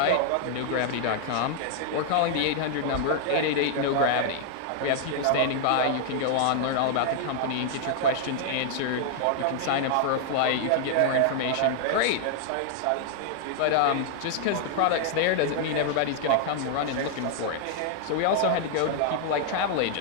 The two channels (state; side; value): different; both; correlation 0.00